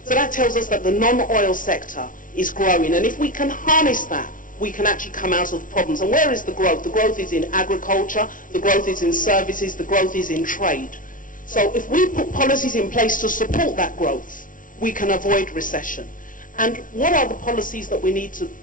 So that tells us that the non-oil sector is growing. And if we can harness that, we can actually come out of the problems. And where is the growth? The growth is in agriculture, the growth is in services, the growth is in trade. So if we put policies in place to support that growth, we can avoid recession. And what are the policies that we need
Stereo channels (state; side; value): late; right; 0.38 ms